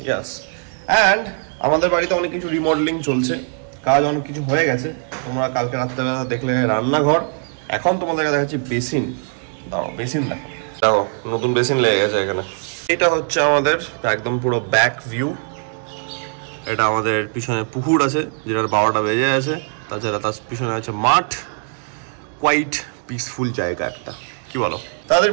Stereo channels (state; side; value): silent; left; 56 dB below the other